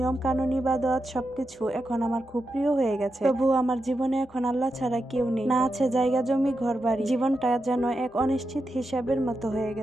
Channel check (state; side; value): normal; both; correlation 0.87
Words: কানুন ইবাদত সবকিছু এখন আমার খুব প্রিয় হয়ে গেছে। তবুও আমার জীবনে এখন আল্লাহ ছাড়া কেউ নেই, না আছে জায়গা জমি ঘর বাড়ি। জীবনটা যেন এক অনিশ্চিত হিসাবের মতো হয়ে